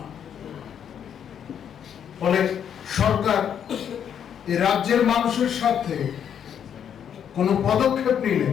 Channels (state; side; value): quieter; right; 8.6 dB